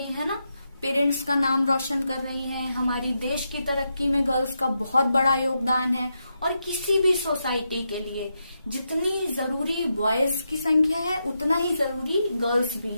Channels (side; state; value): both; inverted; correlation -0.85